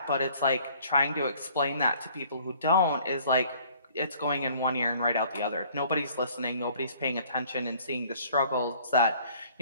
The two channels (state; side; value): inverted; both; correlation -0.55